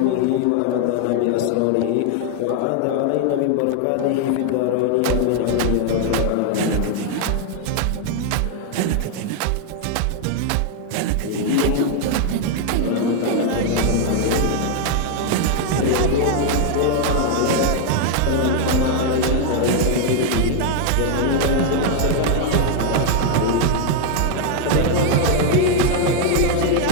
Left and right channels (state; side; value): different; both; correlation 0.00